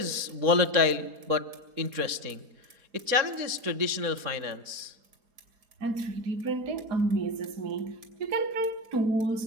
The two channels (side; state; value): left; late; 4.2 ms